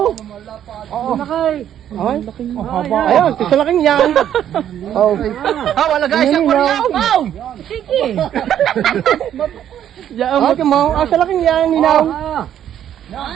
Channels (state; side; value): quieter; left; 10.4 dB